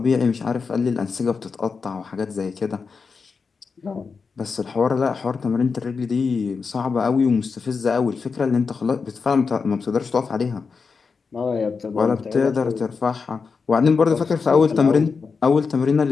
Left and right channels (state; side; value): quieter; right; 5.1 dB